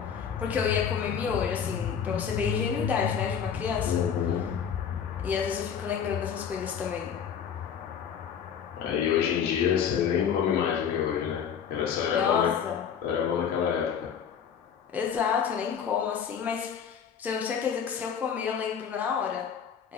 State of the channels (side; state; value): right; quieter; 7.7 dB